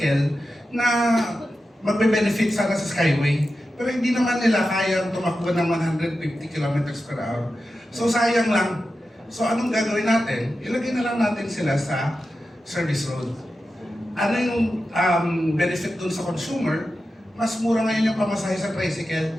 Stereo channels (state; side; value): normal; both; correlation 0.91